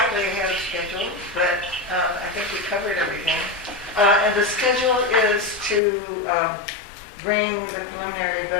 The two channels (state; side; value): drops out; right; at 5.8 s